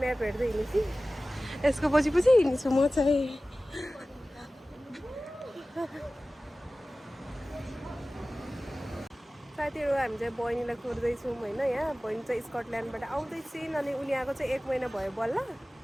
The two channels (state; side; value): normal; both; correlation 0.97